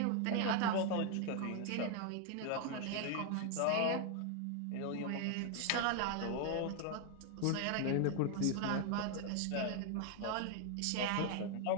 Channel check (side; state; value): both; different; correlation 0.01